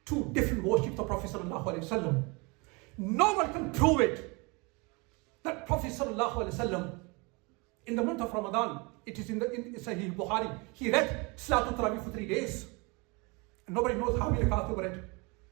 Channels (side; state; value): left; quieter; 28.6 dB